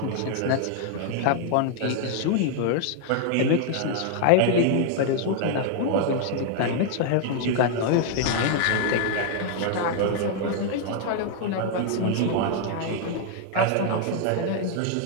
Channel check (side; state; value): both; different; correlation 0.00